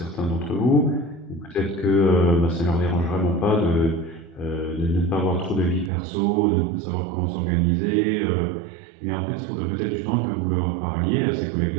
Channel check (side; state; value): left; drops out; at 5.9 s